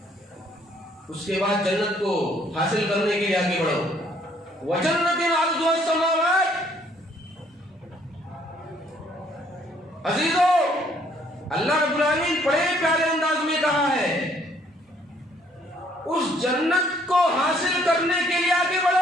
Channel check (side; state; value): both; normal; correlation 0.65